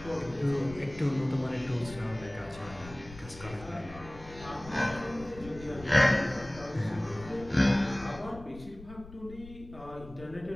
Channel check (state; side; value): noise; left; rumble, 16 dB below the sound